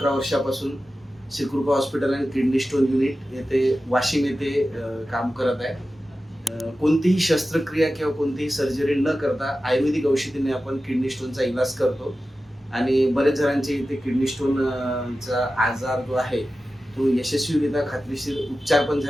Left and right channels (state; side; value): normal; both; correlation 0.94